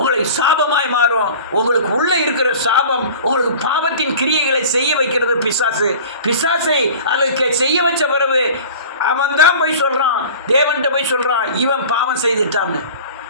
சாபமாய் மாறும். உங்களுக்கு உள்ள இருக்கிற சாபம் உங்களுக்கு பாவத்தின் கிரியைகளை செய்ய வைக்கிறது பிசாசு. பிசாசை அதுக்கு செய்ய வச்ச பிறகு அவன் தான் போய் சொல்றான், தேவன்கிட்ட போய் சொல்றான், இவன் பாவம் செய்துட்டான்னு.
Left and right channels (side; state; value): both; inverted; correlation -0.40